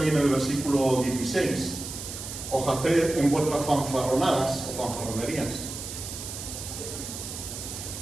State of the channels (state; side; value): noise; right; hiss, 8 dB below the sound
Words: en el versículo 16, ojalá en vuestras fanfarronadas o fanfarronerías.